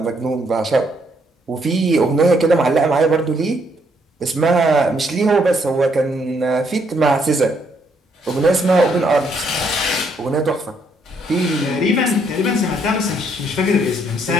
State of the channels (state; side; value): normal; both; correlation 0.71